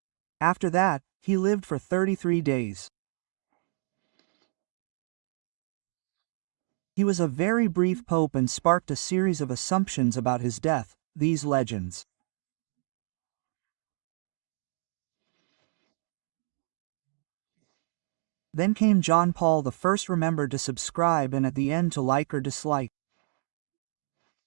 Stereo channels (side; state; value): left; silent; 58 dB below the other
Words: After that, he lived for 33 days. He was a very brief pope and sparked a series of assumptions about his death, these legends. Then came John Paul I. Remember to subscribe and at the end to like or dislike.